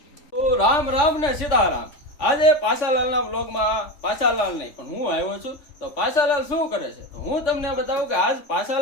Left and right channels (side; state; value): right; late; 3.5 ms